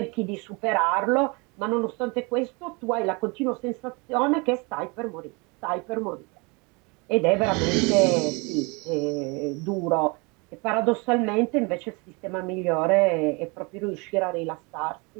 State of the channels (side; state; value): left; quieter; 29.0 dB